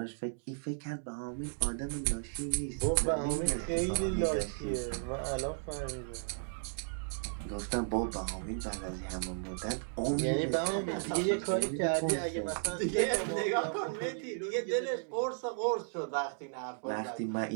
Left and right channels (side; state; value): left; silent; digital silence